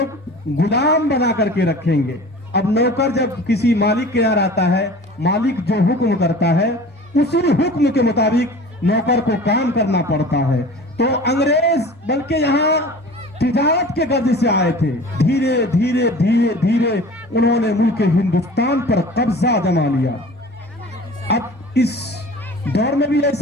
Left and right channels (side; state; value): both; normal; correlation 0.41